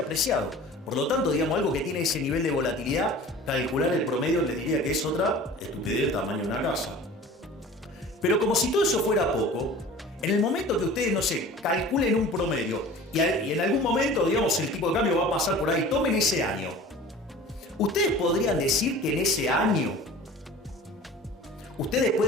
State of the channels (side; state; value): both; normal; correlation 0.42